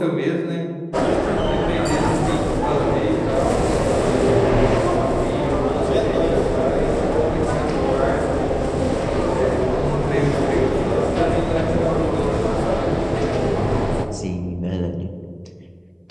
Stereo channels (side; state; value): both; identical; correlation 1.00